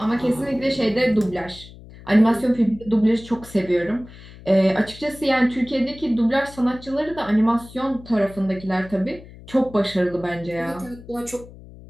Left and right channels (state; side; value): noise; left; hum, 19 dB below the sound